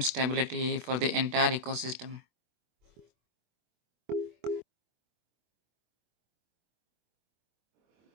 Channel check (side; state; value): left; late; 24 ms